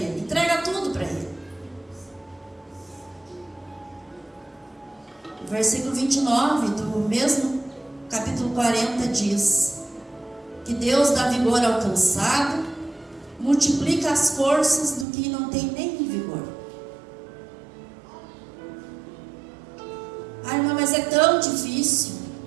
entrega tudo para Ele. O versículo 29 do mesmo capítulo 40 diz que Deus dá vigor ao cansado, multiplica as forças do que não tem nem vigor. Ai, irmã, mas é tão difícil.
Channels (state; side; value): drops out; left; at 15.1 s